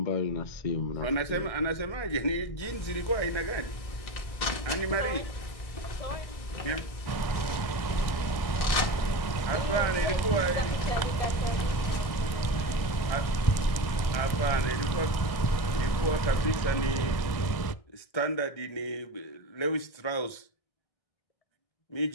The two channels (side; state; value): right; late; 1.6 ms